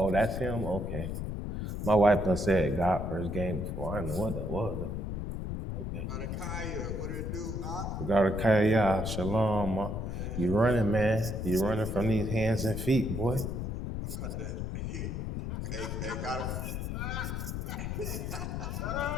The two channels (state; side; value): noise; left; rumble, 3 dB below the sound